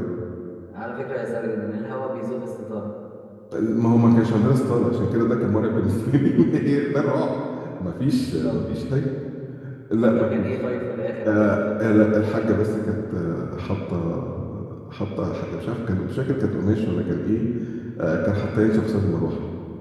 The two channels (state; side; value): identical; both; correlation 1.00